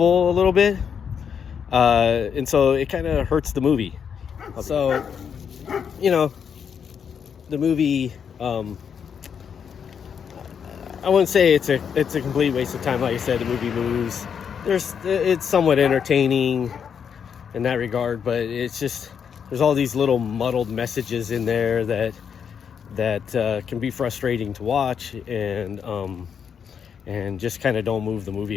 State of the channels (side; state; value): right; quieter; 7.3 dB